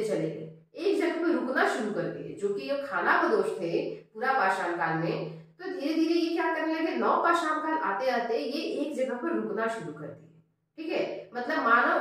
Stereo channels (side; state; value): both; identical; correlation 1.00